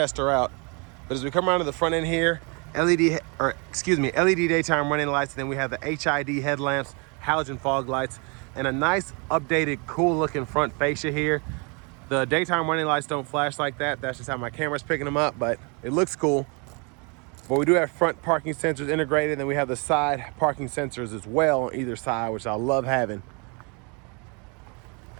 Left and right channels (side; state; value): left; quieter; 32.7 dB